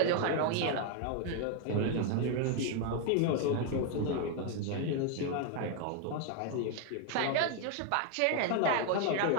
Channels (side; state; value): both; different; correlation 0.00